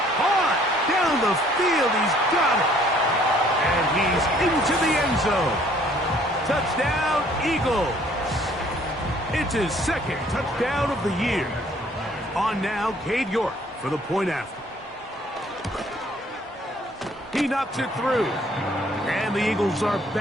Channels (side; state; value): both; normal; correlation 0.60